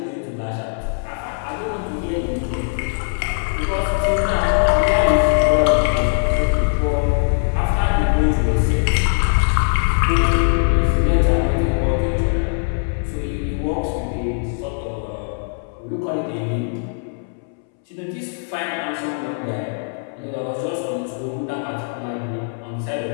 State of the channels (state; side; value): silent; right; 65 dB below the other